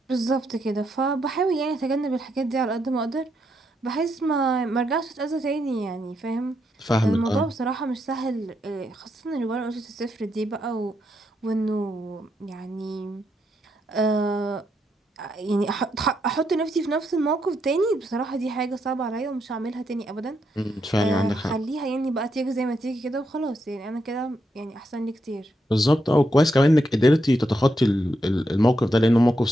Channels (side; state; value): both; normal; correlation 0.80